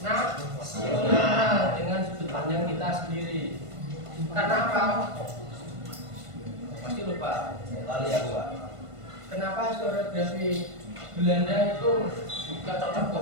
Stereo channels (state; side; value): late; left; 1.5 ms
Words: dengan sudut pandang kita sendiri. Karena apa? Pasti lupa. Lali aku, Pak. Kenapa historiografi Belanda itu gak cocok